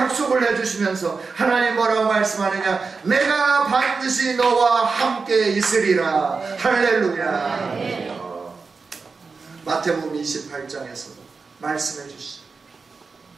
해주시면서 하나님 뭐라고 말씀하느냐? 내가 반드시 너와 함께 있으리라. 할렐루야. 마태복음 28장에서도 말씀해 주시죠.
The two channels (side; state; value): left; quieter; 4.6 dB